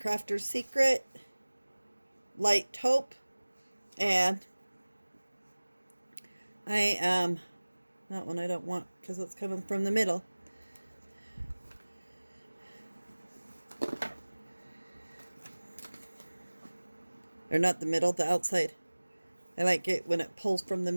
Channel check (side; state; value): both; inverted; correlation -1.00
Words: Secret, Light Taupe, and that one I don't want because it's coming from the middle. Or not the middle, the outside. I like it when it pulls from the